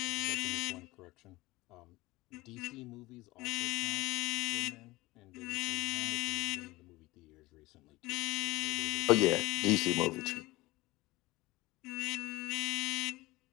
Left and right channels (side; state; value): right; quieter; 20.2 dB